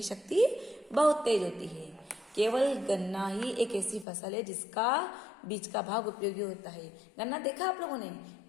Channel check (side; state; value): right; drops out; at 4.0 s